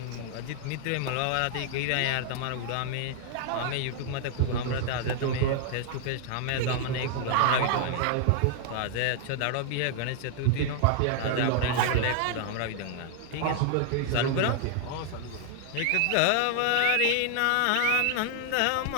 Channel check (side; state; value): both; different; correlation 0.00